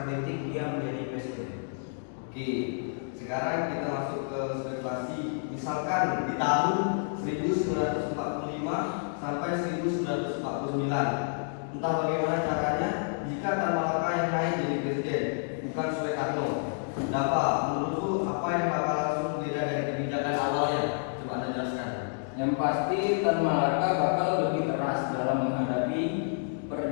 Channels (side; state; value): right; silent; digital silence